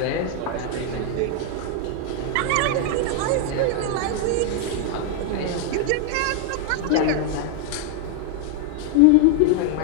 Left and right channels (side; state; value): both; different; correlation 0.00